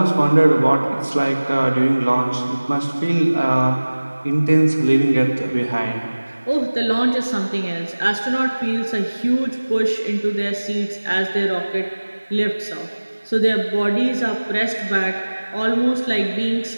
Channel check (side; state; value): both; inverted; correlation -1.00